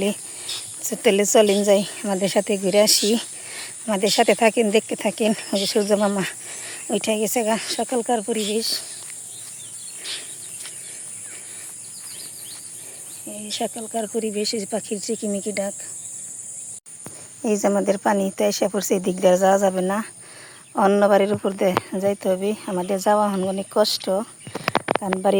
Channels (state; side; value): identical; both; correlation 1.00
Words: তাহলে চলেন যাই, আমাদের সাথে ঘুরে আসি, আমাদের সাথে থাকেন, দেখতে থাকেন। ওই যে সূর্য মামা ওইটা গেছে গা। সকালকার পরিবেশ, এই সকালকার পরিবেশ, পাখির চিকিমিকি ডাক। এই যে আমাদের পানি তো এসে পড়ছে, এই দিক দিয়ে যাওয়া যাবে না, অন্য বাড়ির উপর দিয়ে যাইতে হবে। আমাদের যাওয়া অনেক কষ্ট, কারণ